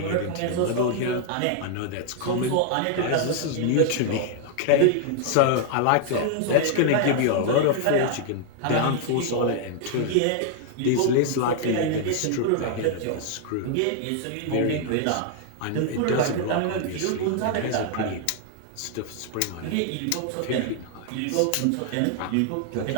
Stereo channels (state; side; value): different; both; correlation 0.00